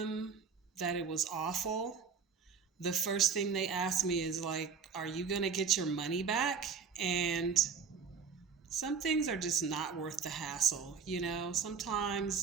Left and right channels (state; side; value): quieter; left; 5.9 dB